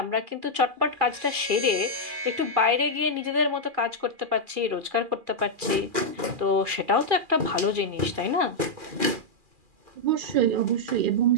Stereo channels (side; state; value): left; late; 2.4 ms